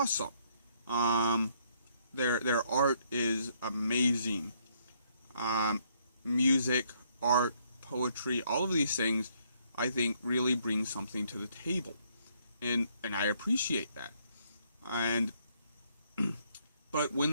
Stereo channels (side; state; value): both; inverted; correlation -0.70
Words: Their art is amazing. Music, art, poetry, all of these things, I think, really bring something to the table, and I appreciate that. And but